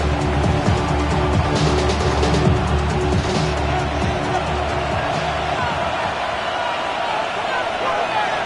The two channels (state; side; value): identical; both; correlation 1.00